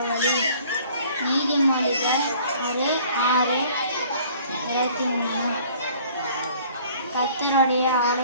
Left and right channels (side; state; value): both; inverted; correlation -0.54